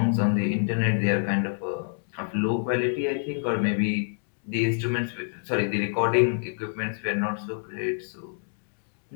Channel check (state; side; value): silent; right; digital silence